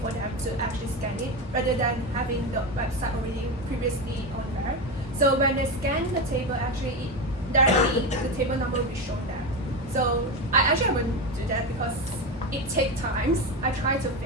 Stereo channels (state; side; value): normal; both; correlation 0.17